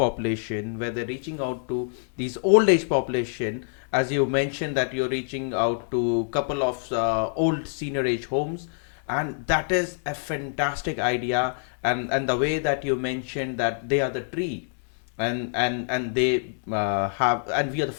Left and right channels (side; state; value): right; silent; digital silence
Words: where they're reaching out to these old age population. As you mentioned that you're reaching out to couple of old senior age homes, and that is a fantastic idea. And the way that you mentioned that they are the tree, and they have, and we are the